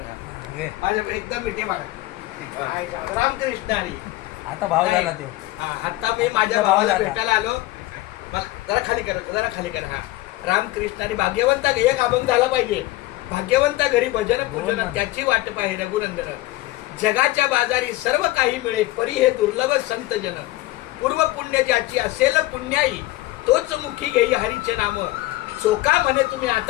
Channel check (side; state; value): right; quieter; 17.9 dB